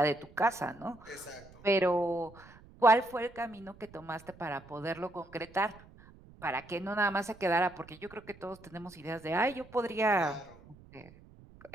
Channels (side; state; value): right; noise; rumble, 22 dB below the sound